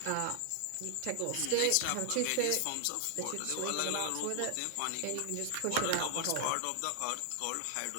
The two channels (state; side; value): different; both; correlation 0.00